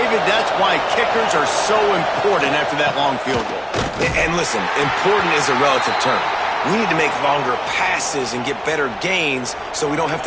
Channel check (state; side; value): identical; both; correlation 1.00